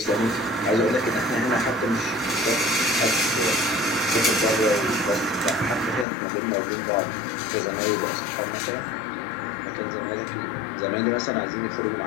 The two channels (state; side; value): drops out; right; at 6.1 s